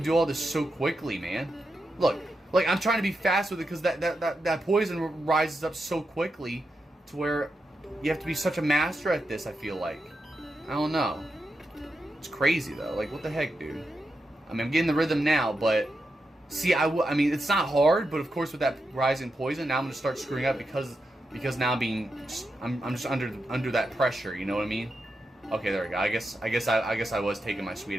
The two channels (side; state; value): both; normal; correlation 0.87